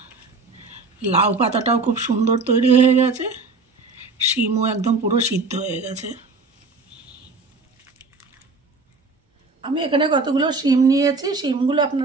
লাউ পাতাটাও খুব সুন্দর তৈরি হয়ে গেছে, শিমও একদম পুরো সিদ্ধ হয়ে গেছে। আমি এখানে কতগুলো শিম নিয়েছি। শিমগুলো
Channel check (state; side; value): quieter; left; 3.9 dB